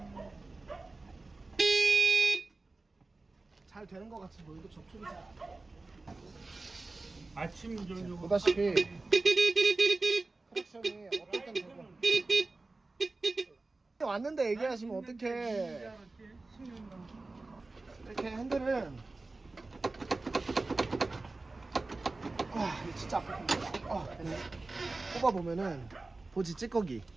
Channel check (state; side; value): quieter; left; 3.3 dB